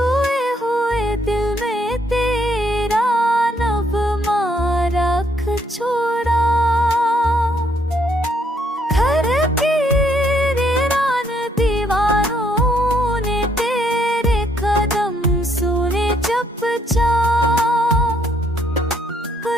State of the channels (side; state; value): both; normal; correlation 0.70